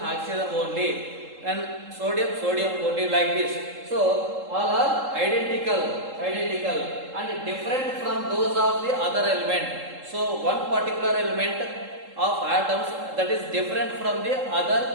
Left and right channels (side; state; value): left; late; 3.7 ms